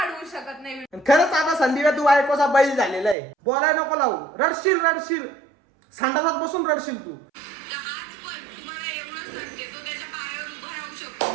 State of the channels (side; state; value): left; drops out; at 3.2 s